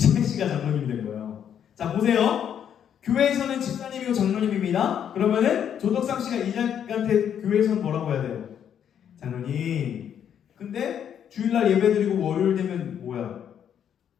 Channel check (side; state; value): right; quieter; 9.0 dB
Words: 씨가 장로님이 된 거예요. 자, 보세요. 교회에서는 집사님이고 장로님입니다. 그러면은 조덕삼 씨가 이자익한테 교회에서는 뭐라고 해야 돼요? 장로님. 근데 주일날 예배드리고 월요일 되면 뭐야?